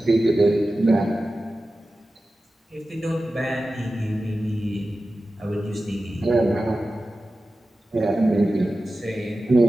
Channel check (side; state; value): both; normal; correlation 0.94